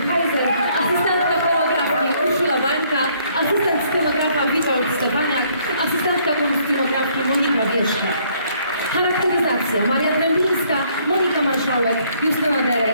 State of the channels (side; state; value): both; inverted; correlation -0.65